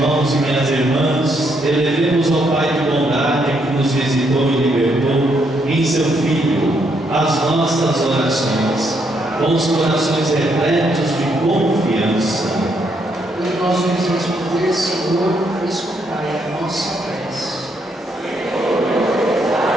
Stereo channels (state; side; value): normal; both; correlation 0.74